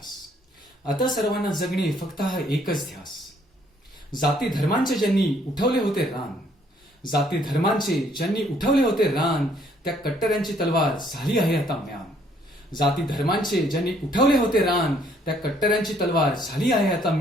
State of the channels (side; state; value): both; normal; correlation 0.65